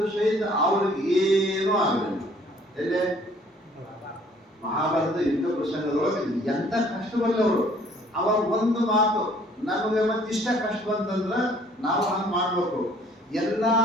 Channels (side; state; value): both; normal; correlation 0.58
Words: ಸಹಿತ ಅವ್ರಿಗೆ ಏನೂ ಆಗಲಿಲ್ಲ. ಎಲ್ಲೇ ಮಹಾಭಾರತ ಯುದ್ಧ ಪ್ರಸಂಗದೊಳಗೆ ಎಂತ ಕಷ್ಟ ಬರಲಿ ಅವರು. ಅವಾಗ ಒಂದು ಮಾತು, ನಮಗೆ ಮತ್ತೆ ಇಷ್ಟ ಕಷ್ಟ ಬಂತಂದ್ರ ನಾವು ಹಂಗೆ ಮಾಡ್ಬೇಕು. ಎಲ್ಲಾ